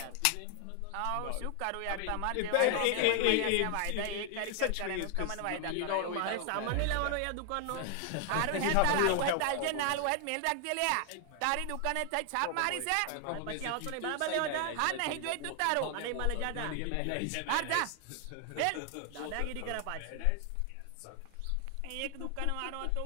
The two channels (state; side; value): different; both; correlation 0.00